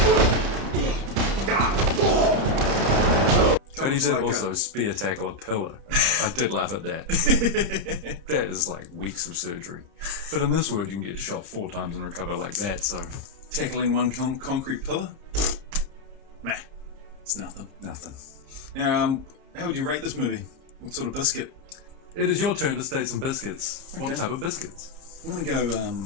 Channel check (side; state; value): left; late; 30 ms